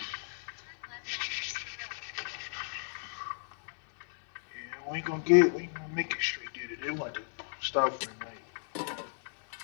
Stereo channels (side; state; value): right; silent; digital silence